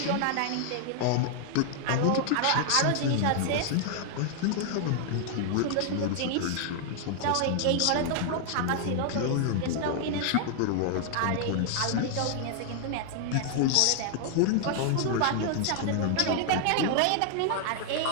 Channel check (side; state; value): both; different; correlation 0.00